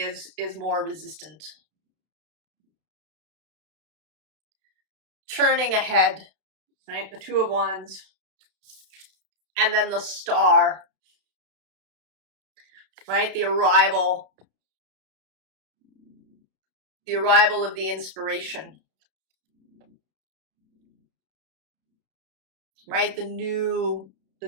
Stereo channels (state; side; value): late; left; 32 ms